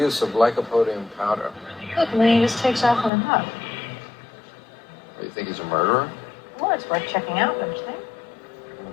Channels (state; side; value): drops out; right; at 3.1 s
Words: of lycopodium powder. Look, Malini just takes off on a hug. You think he's a murderer? Well, it's worth checking out, don't you think?